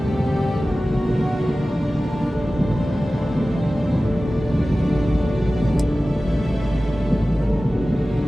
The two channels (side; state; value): both; normal; correlation 0.96